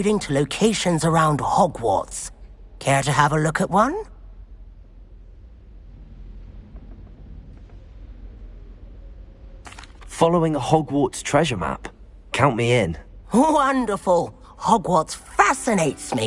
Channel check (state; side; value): identical; both; correlation 1.00